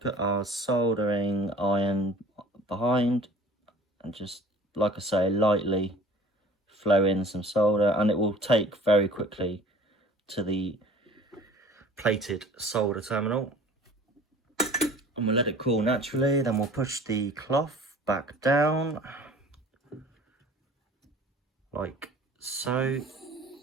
our soldering iron behind and just, like I say, lightly flow in some solder, and it will take very quickly to the plated solder terminal. And we'll let it cool naturally, then we'll push the cloth back down, like so.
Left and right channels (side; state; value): both; normal; correlation 0.46